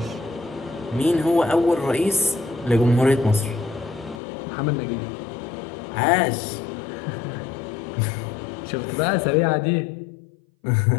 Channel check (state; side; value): drops out; right; at 4.2 s